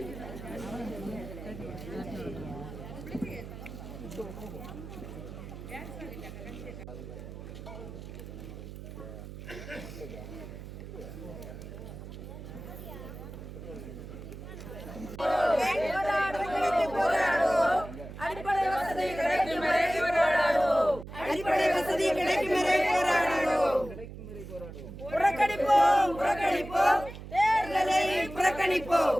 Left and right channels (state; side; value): noise; right; hum, 12 dB below the sound